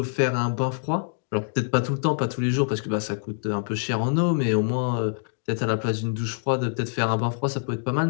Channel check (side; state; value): right; silent; digital silence